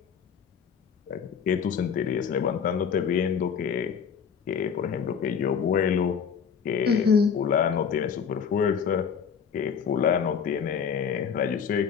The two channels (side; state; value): right; quieter; 6.9 dB